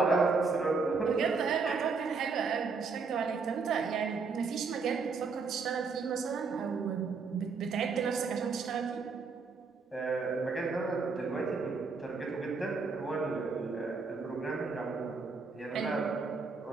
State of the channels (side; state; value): left; quieter; 4.7 dB